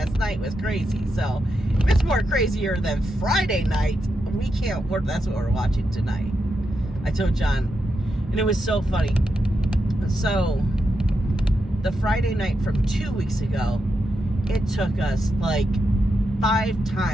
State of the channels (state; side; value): normal; both; correlation 0.85